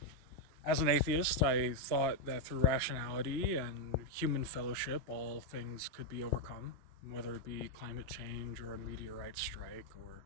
As an atheist, I thought that through rationality and human fellowship, all things could be overcome, whether it be climate change or a meteorite strike or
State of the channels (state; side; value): late; left; 2.9 ms